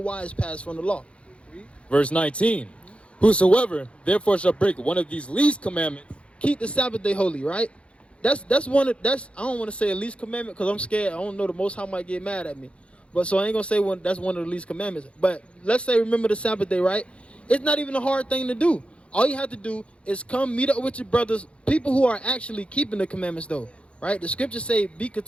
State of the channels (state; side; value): late; right; 0.060 ms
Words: pass from the law. Verse 19. Whosoever therefore shall break one of these least commandments, keep the Sabbath day holy, right? That's I don't want to say a least commandment because I'm scared. I don't know, the Most High might get mad at me. But so I ain't gonna say that's one of the least commandments. But let's say remember the Sabbath day, right? It's not even a hard thing to do. All you have to do is come meet up with your brothers, people who are actually keeping the commandments though, right? The scriptures say, be